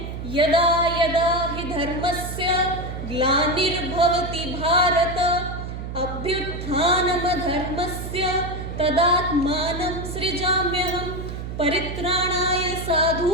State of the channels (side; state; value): right; noise; hum, 7 dB below the sound